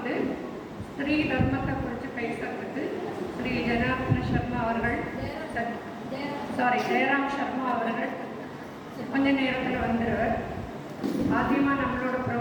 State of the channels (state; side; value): identical; both; correlation 1.00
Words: ஸ்ரீ தர்மத்தை குறித்து பேசுறதுக்கு ஸ்ரீ ஜனார்தன சர்மா அவர்கள், ஜெயராம் சர்மா அவர்கள் கொஞ்ச நேரத்தில் வந்துடுவார். ஆദ്യமாக நம்மளோட